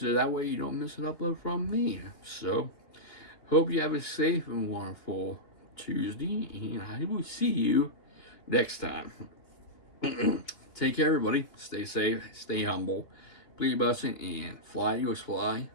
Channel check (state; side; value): late; right; 2.9 ms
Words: that way you don't miss an upload from me. So, hope you have a safe and wonderful Tuesday, and I will see you next time. Take care, everybody. Stay safe, stay humble, be your blessing, and fly, Eagles fly.